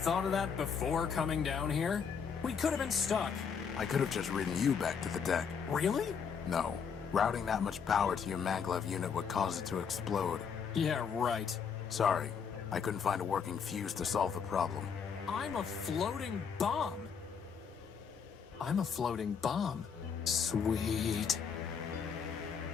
of that before coming down here? We could have been stuck. I could have just ridden you back to the deck. Really? No. Routing that much power to your maglev unit would cause it to explode. Yeah, right. Sorry, I couldn't find a working fuse to solve the problem. I'm a floating bomb. I'm a floating bomb. Sweet.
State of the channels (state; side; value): quieter; right; 6.6 dB